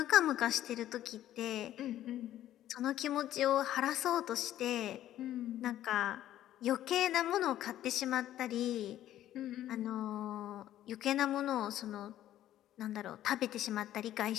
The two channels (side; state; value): right; quieter; 12.7 dB